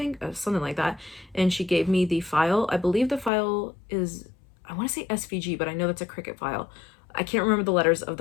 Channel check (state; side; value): drops out; right; at 3.3 s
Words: something like that, and she gave me the file. I believe the file is, I want to say SVG, but I know that's a Cricut file. I can't remember the letters of